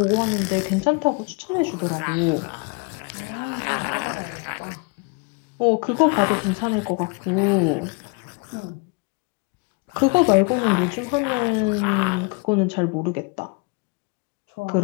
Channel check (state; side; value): quieter; right; 31.1 dB